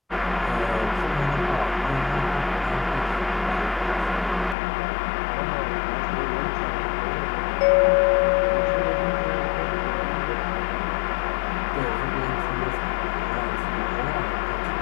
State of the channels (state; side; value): drops out; right; at 4.5 s